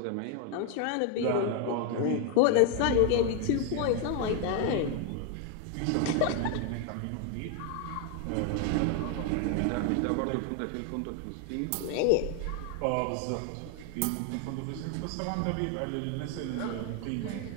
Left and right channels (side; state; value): both; different; correlation 0.01